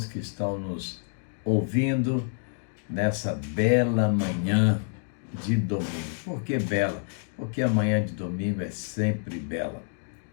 que estão nos ouvindo nessa bela manhã de domingo. Por que bela? Porque a manhã de domingo é sempre bela.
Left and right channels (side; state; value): right; silent; digital silence